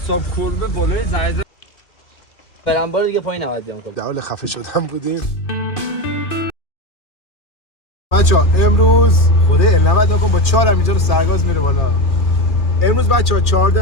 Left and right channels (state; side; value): late; right; 2.7 ms